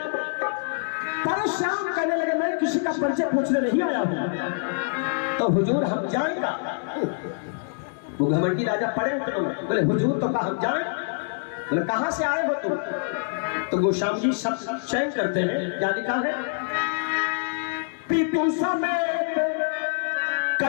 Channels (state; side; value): silent; right; digital silence